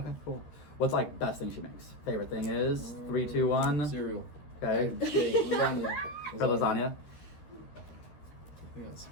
cool. What's like best thing she makes? Favorite thing is 3, 2, 1. Cereal. Okay. Lasagna. For lasagna. Yeah, it's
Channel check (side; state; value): right; late; 13 ms